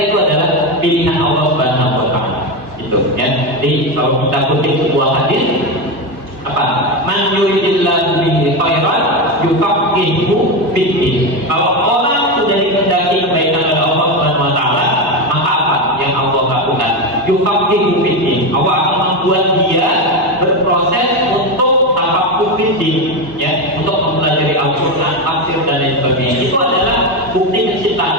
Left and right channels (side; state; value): left; late; 2.9 ms